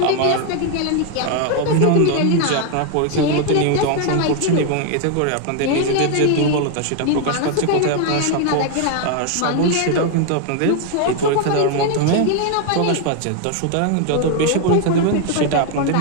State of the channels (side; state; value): both; different; correlation 0.01